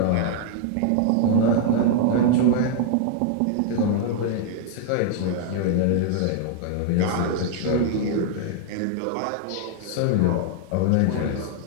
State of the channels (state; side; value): different; both; correlation 0.00